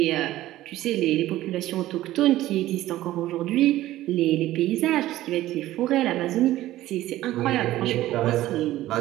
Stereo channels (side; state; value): left; quieter; 15.1 dB